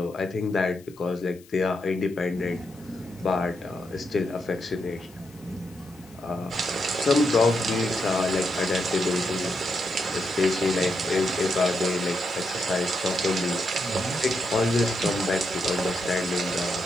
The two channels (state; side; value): noise; left; hiss, 26 dB below the sound